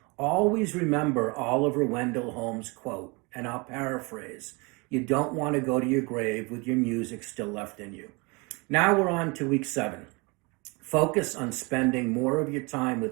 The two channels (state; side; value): quieter; left; 28.4 dB